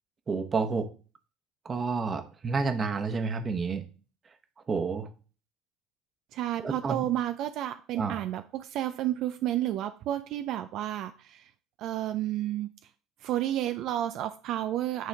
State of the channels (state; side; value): quieter; left; 7.8 dB